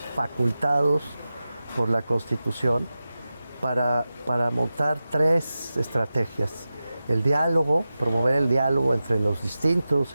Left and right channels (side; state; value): both; inverted; correlation -0.94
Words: facultados por la Constitución para montar 3 estrategias. El diálogo, promover el diálogo entre los distintos,